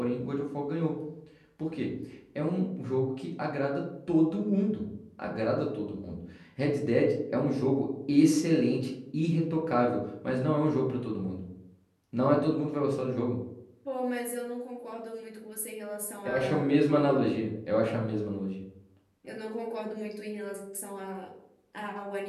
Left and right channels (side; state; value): both; identical; correlation 1.00